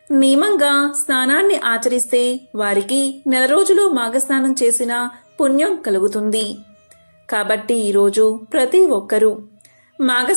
నియమంగా స్నానాన్ని ఆచరిస్తే వారికి నెల రోజులు మాఘస్నానం చేసిన పుణ్యం కలుగుతుంది. కాబట్టి ఈరోజు ప్రతి ఒక్కరూ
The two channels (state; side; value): inverted; both; correlation -1.00